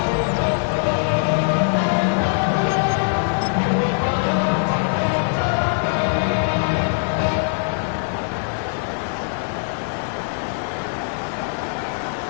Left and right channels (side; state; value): right; silent; digital silence